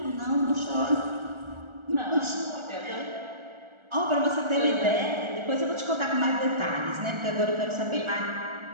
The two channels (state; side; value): late; left; 1.4 ms